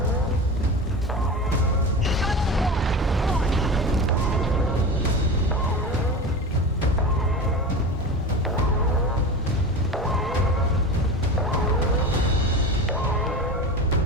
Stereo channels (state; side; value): normal; both; correlation 0.29